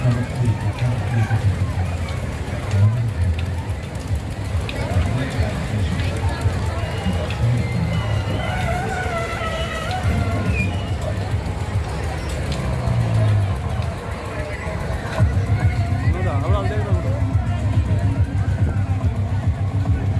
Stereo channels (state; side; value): identical; both; correlation 1.00